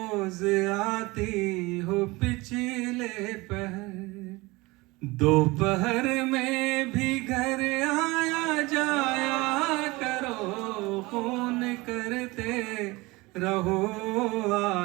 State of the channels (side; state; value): left; quieter; 22.6 dB